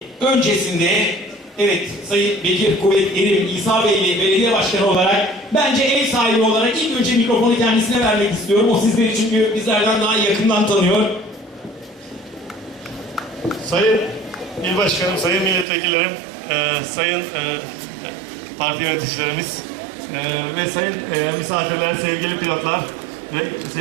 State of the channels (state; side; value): drops out; left; at 15.7 s